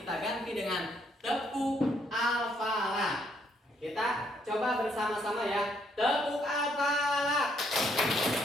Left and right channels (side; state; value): both; normal; correlation 0.71